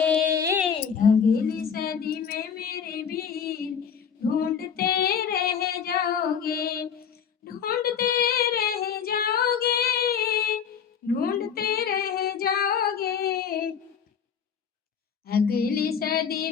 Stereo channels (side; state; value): right; quieter; 7.3 dB